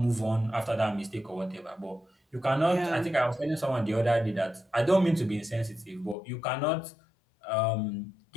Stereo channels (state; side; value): drops out; right; at 6.2 s